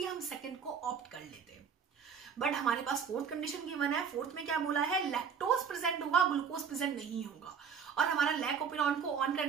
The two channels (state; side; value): quieter; left; 6.8 dB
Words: हम सेकंड को ऑप्ट कर लेते, बट हमारे पास फोर्थ कंडीशन गिवन है। फोर्थ में क्या बोला है? लैक्टोज प्रेजेंट होगा, ग्लूकोज प्रेजेंट नहीं होगा। और हमारा लैक ऑपेरॉन को ऑन